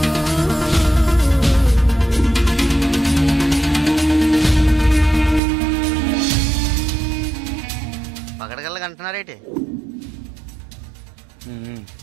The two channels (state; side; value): drops out; left; at 5.4 s